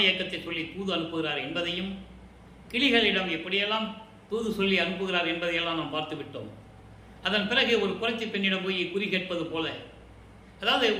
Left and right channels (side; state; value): both; identical; correlation 1.00